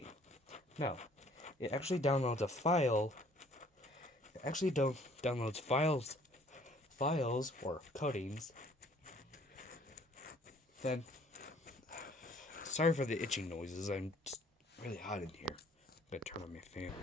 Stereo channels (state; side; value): normal; both; correlation 0.57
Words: No, it actually downloads a file. It actually downloads files or codings. Then, sorry for the itching noises. I'm just really hot in here. I'm gonna turn on my fan.